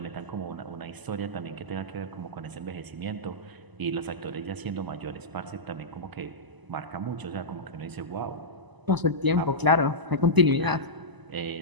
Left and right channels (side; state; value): left; late; 1.0 ms